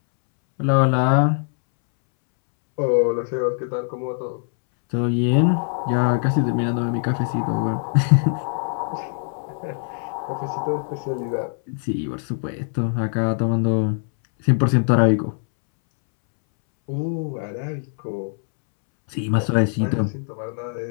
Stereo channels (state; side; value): silent; right; 64 dB below the other